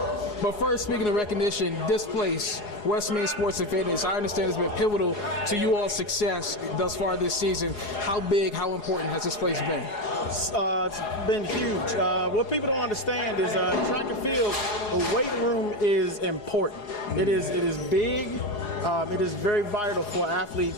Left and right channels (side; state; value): right; late; 4.8 ms